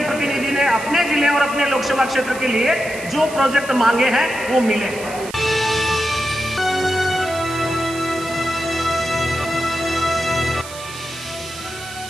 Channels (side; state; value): right; noise; hiss, 14 dB below the sound